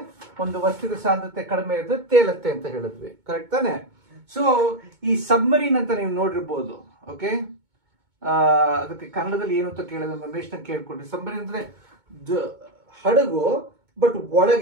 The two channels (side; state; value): left; late; 2.2 ms